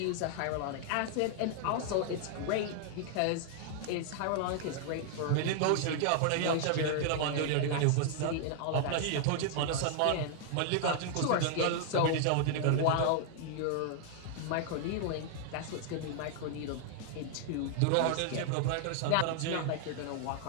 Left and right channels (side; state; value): both; different; correlation 0.00